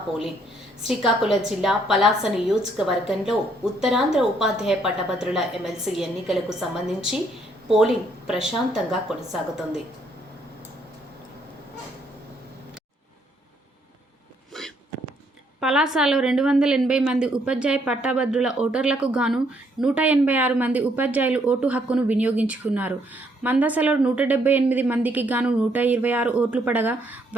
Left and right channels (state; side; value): normal; both; correlation 0.70